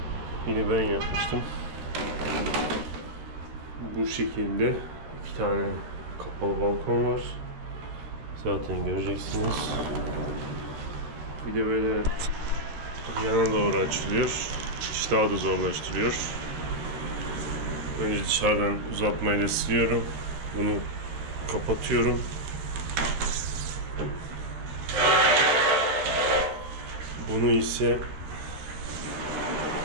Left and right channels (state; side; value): late; left; 14 ms